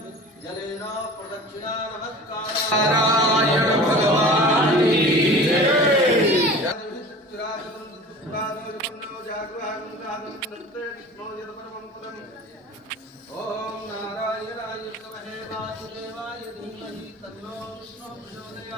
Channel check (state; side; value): normal; both; correlation 0.39